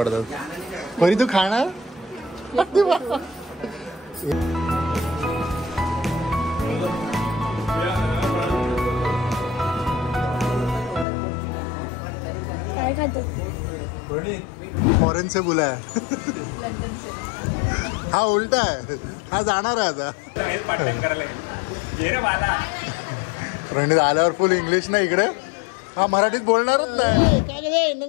परी तू खाणार? काय खातो? फॉरेन से बुला है. हा उलटा आहे. हा जाणार आहे आता. प्रणित आल्यावर फुल इंग्लिश ना इकडे. हा मराठीत बोलणारच नाही. काय रे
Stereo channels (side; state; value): right; drops out; at 11.1 s